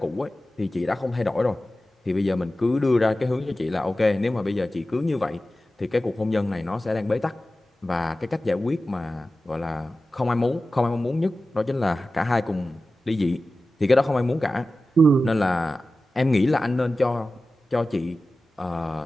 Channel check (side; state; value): both; normal; correlation 0.95